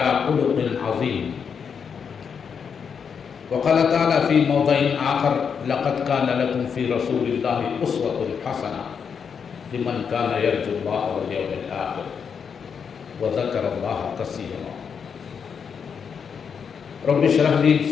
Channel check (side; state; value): right; quieter; 6.7 dB